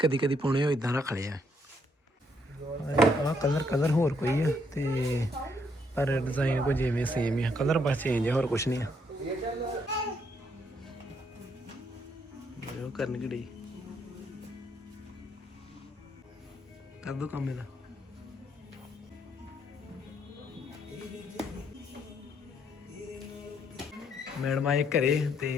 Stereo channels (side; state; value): both; normal; correlation 0.72